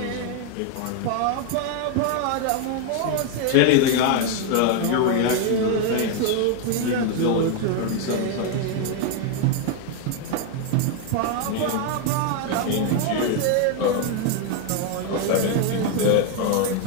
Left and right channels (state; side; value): different; both; correlation 0.01